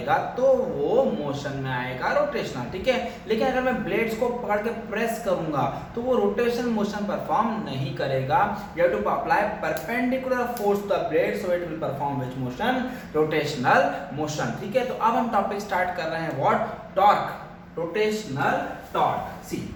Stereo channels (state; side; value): identical; both; correlation 1.00